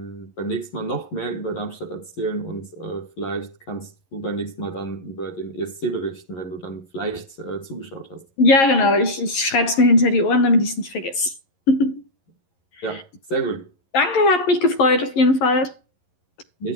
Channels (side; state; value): right; late; 11 ms